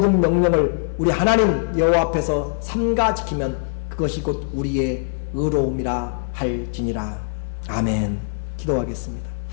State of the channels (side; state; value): right; silent; 64 dB below the other